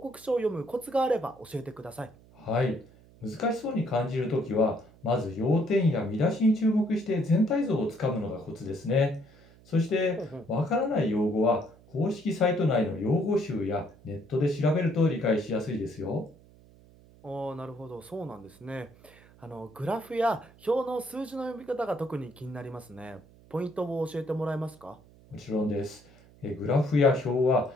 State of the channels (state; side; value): noise; right; hum, 25 dB below the sound